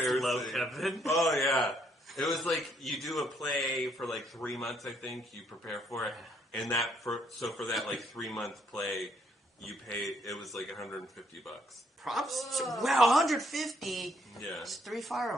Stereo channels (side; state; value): both; normal; correlation 0.69